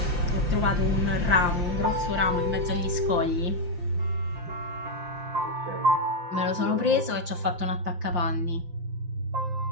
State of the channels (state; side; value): late; left; 5.7 ms